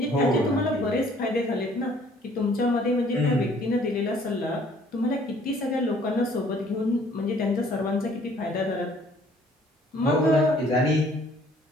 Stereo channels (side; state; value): both; normal; correlation 0.58